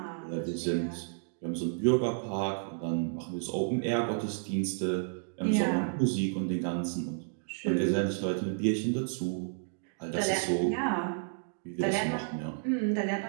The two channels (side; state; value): left; silent; digital silence